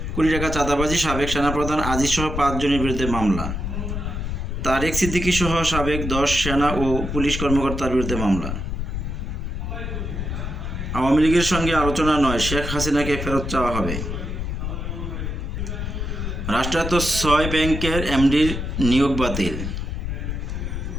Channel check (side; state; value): left; noise; rumble, 4 dB below the sound